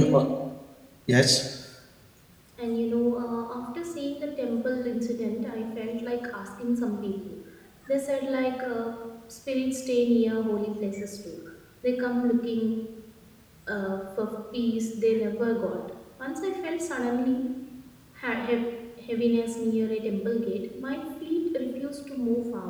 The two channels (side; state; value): both; identical; correlation 1.00